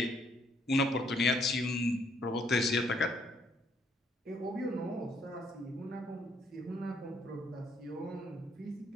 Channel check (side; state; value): both; normal; correlation 0.68